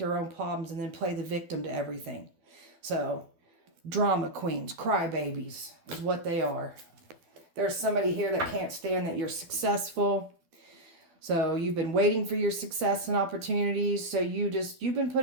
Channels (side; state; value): left; late; 12 ms